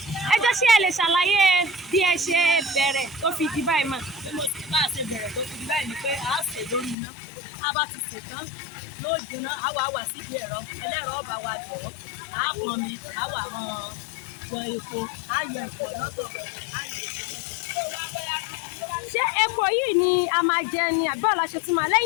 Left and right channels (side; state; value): right; drops out; at 7.0 s